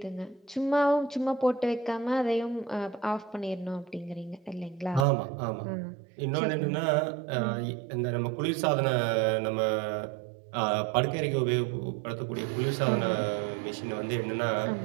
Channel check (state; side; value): drops out; left; at 5.1 s